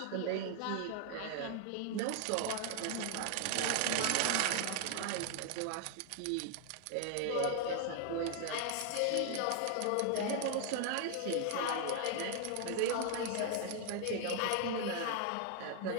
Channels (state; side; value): different; both; correlation 0.00